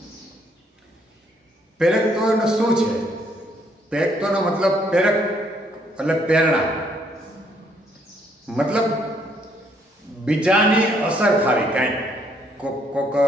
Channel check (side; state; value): both; normal; correlation 0.69